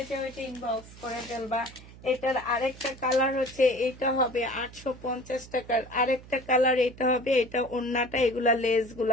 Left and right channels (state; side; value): noise; right; hum, 19 dB below the sound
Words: চাও এটা ইনবক্স করে ফেলবা। এটার আরেকটা কালার হচ্ছে, এটা হবে 850 টাকার। আরেকটা কালার এটা হবে, এটা ওড়নাটা, এগুলা লেস